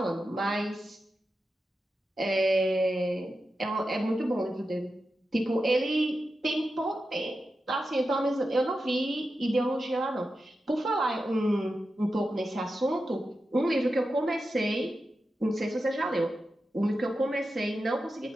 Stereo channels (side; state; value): both; normal; correlation 0.90